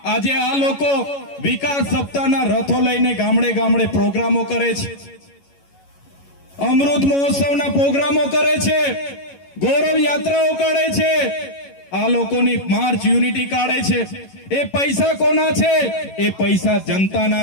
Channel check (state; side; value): late; right; 11 ms